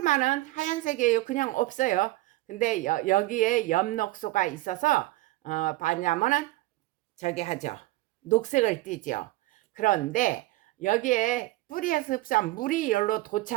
하얀색이에요. 그냥 없어요. 근데 여기에 엽록소가 있어서 뭐냐면은 저기 하죠. 녹색을 띠죠. 그런데 여기에 뿌리에서 흡수한 물이 열로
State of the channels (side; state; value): left; quieter; 18.6 dB